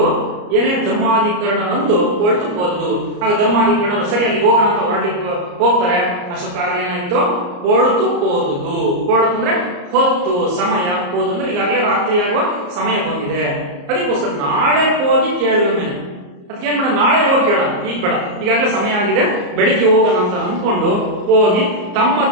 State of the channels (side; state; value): left; late; 34 ms